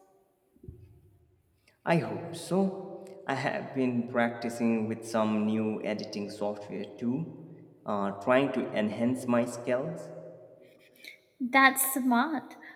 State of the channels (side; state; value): both; identical; correlation 1.00